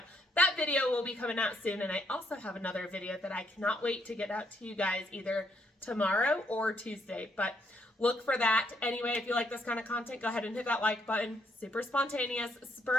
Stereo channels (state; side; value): normal; both; correlation 0.72